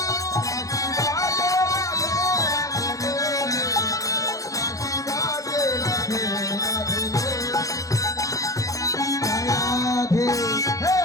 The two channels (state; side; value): late; right; 0.16 ms